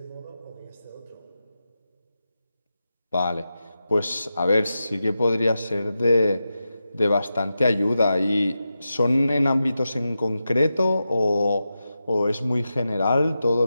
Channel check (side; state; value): both; inverted; correlation -0.91